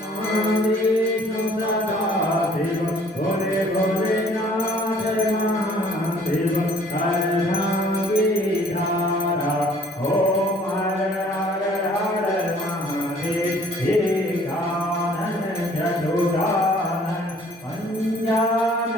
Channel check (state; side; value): normal; both; correlation 0.56